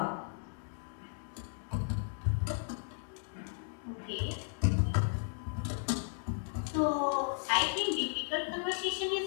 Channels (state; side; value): silent; right; digital silence